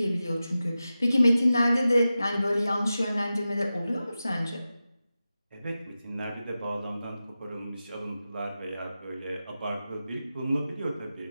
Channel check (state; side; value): inverted; both; correlation -0.93